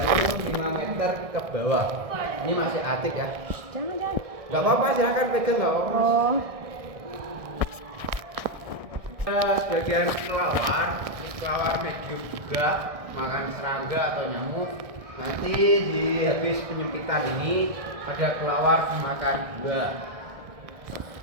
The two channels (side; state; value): left; late; 1.6 ms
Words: 5 meter ke bawah. Ini masih aktif ya. Jangan. Gak apa-apa, silahkan pegang, gak apa-apa. Oh. Sebagian kelawar, ini kelawar medium juga, makan serangga atau nyamuk. Nanti di habis penyempitan ini ada kelawar dimakan juga.